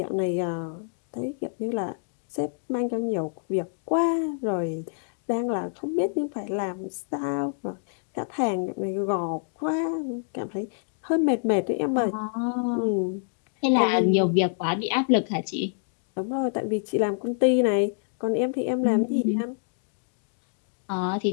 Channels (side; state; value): right; silent; digital silence